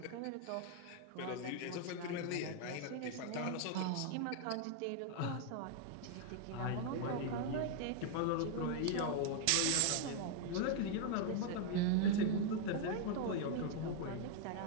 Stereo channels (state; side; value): different; both; correlation 0.00